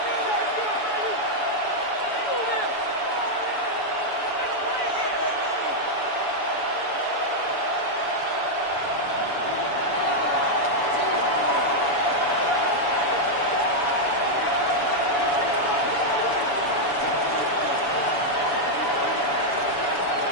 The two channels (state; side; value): late; right; 7.0 ms